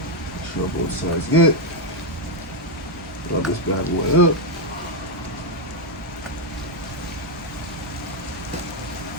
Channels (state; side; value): normal; both; correlation 0.02